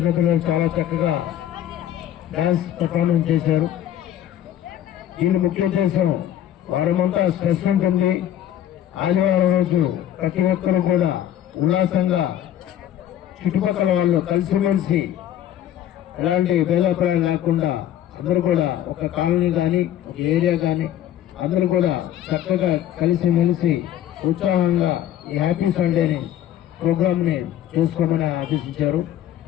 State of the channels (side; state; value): right; quieter; 11.3 dB